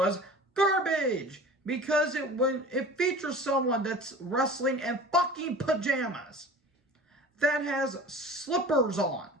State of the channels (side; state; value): both; normal; correlation 0.40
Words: garbage. Because it features someone that's wrestling in fucking pajamas. That has slippers on.